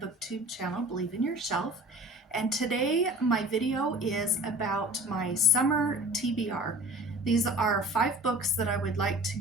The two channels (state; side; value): normal; both; correlation 0.42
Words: channel, Believe in Yourself. And today my video is about my summer TBR. These are 5 books that I would like to